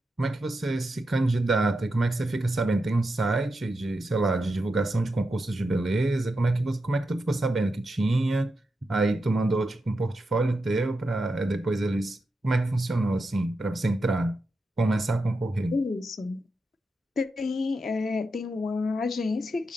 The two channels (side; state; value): both; normal; correlation 0.87